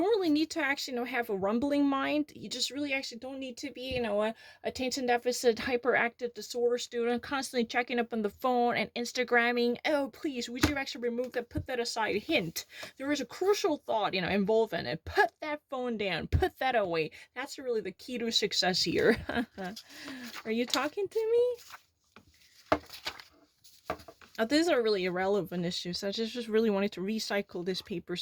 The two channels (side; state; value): both; identical; correlation 1.00